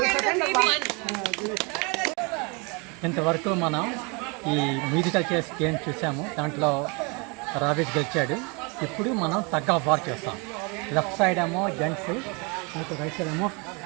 ఇంతవరకు మనం ఈ మ్యూజికల్ చేస్ గేమ్ చూసాము. దాంట్లో రావిస్ గెలిచాడు. ఇప్పుడు మనం టగ్ ఆఫ్ వార్ చేస్తాం. లెఫ్ట్ సైడ్ ఏమో జెంట్స్, మీకు రైట్ సైడ్ ఏమో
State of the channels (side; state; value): left; quieter; 30.9 dB